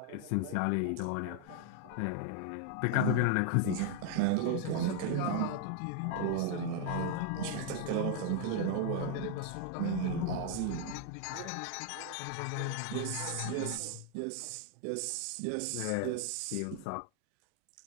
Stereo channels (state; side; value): different; both; correlation 0.00